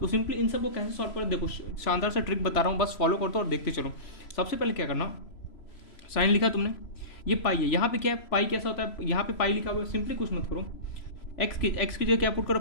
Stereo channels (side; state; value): right; late; 3.0 ms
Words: सिंपली इन सब को कैसे सॉल्व करें, देखो शानदार सा ट्रिक बता रहा हूँ, बस फॉलो कर दो और देखते चलो। सबसे पहले क्या करना, साइन लिखा तुमने, ये पाई है, यहाँ पे क्या है पाई कैसा होता है, यहाँ पे पाई लिखा हुआ है, सिंपली कुछ मत करो, एक्स की जगह क्या पुट करो,